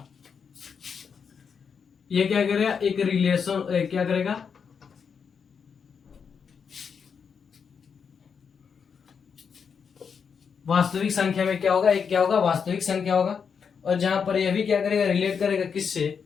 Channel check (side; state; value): right; quieter; 6.4 dB